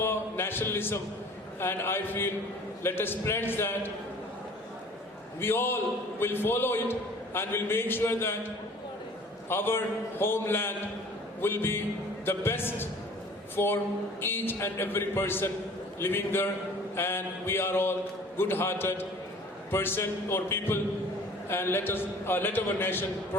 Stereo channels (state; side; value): normal; both; correlation 0.48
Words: nationalism. And I feel, let us pledge that we all will follow it and will make sure that our homeland will be the best for each and every person living there, and we are all good-hearted person or people, and let our nation